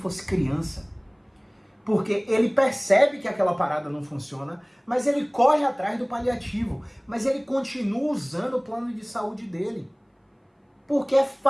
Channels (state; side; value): identical; both; correlation 1.00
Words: criança, porque ele percebe que aquela parada não funciona, mas ele corre atrás do paliativo, mas ele continua usando o plano de saúde dele, porque é